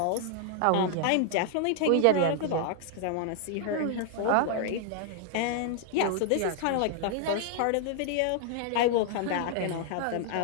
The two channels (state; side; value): different; both; correlation 0.00